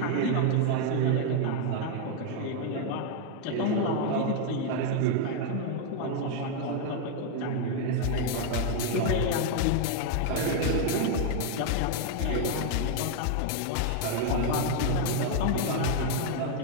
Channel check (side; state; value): both; different; correlation 0.00